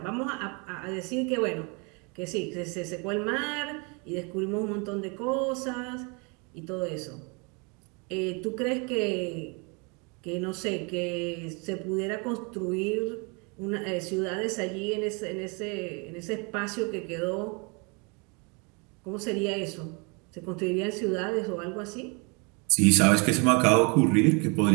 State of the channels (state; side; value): quieter; left; 32.0 dB